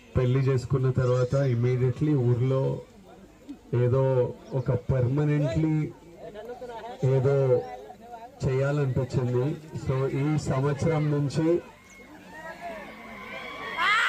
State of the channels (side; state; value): both; identical; correlation 1.00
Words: పెళ్లి చేసుకున్న తర్వాత ఇమీడియట్లీ ఊర్లో ఏదో ఒక పర్మనెంట్లీ ఏదో చేయాలనిపించింది సో ఈ సంవత్సరం నుంచి